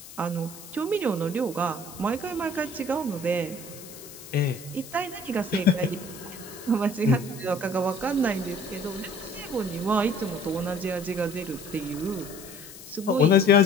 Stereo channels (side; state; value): left; noise; hiss, 16 dB below the sound